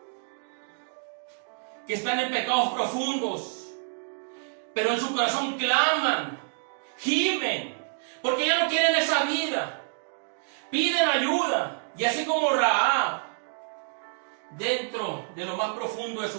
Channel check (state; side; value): silent; left; 59 dB below the other